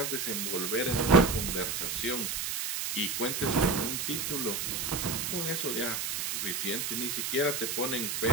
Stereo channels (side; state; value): right; noise; hiss, 1 dB below the sound